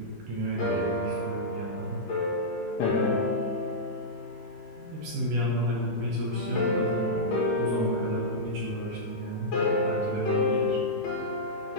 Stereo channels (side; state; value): both; normal; correlation -0.11